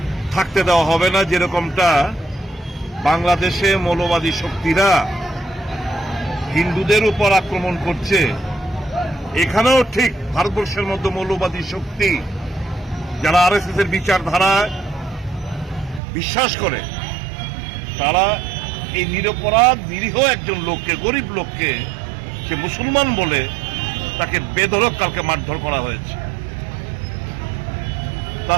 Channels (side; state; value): left; drops out; at 16.0 s